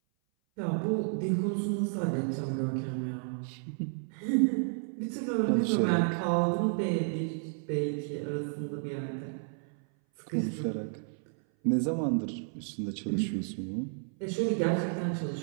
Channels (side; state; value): left; silent; 57 dB below the other